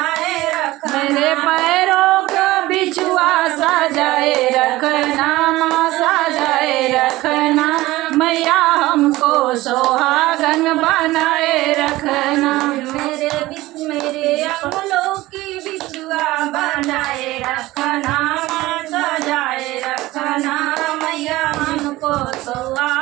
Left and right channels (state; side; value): quieter; left; 18.2 dB